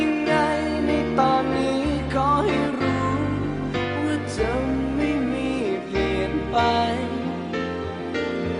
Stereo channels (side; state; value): both; identical; correlation 1.00